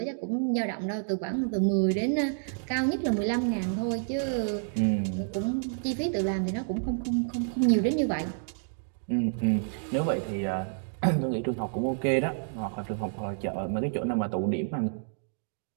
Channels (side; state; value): left; silent; digital silence